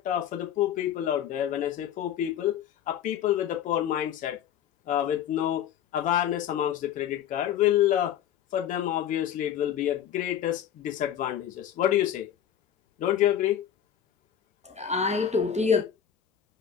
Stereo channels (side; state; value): right; quieter; 9.8 dB